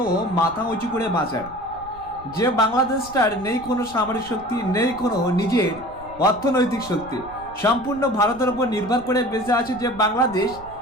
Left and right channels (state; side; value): noise; right; rumble, 20 dB below the sound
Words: মাথা উঁচু করে বাঁচার। যে বাংলাদেশটার নেই কোনো সামরিক শক্তি, নেই কোনো নিজের অর্থনৈতিক শক্তি, সম্পূর্ণ ভারতের উপর নির্ভর করে বেঁচে আছে